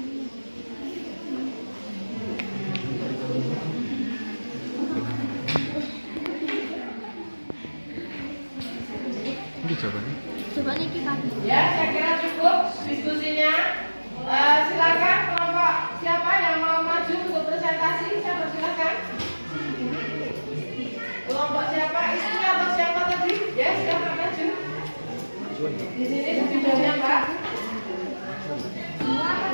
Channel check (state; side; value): inverted; both; correlation -1.00